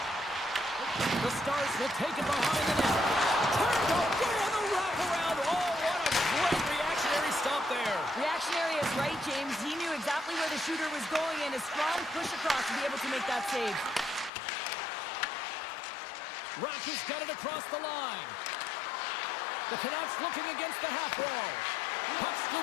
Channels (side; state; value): right; drops out; at 14.3 s